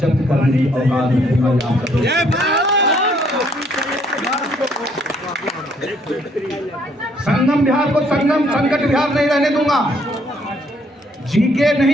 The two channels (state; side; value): normal; both; correlation 0.66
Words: करने की औकात संगम बिहार को संगम संकट बिहार नहीं रहने दूंगा। जीके